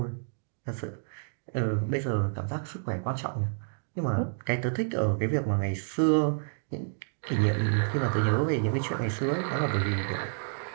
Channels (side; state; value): left; silent; digital silence